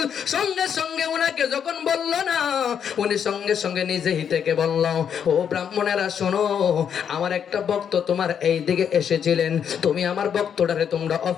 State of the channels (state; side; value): quieter; right; 8.0 dB